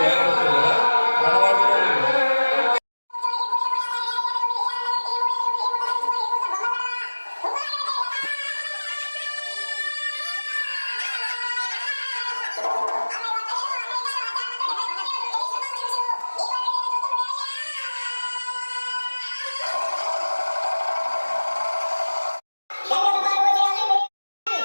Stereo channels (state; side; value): inverted; both; correlation -1.00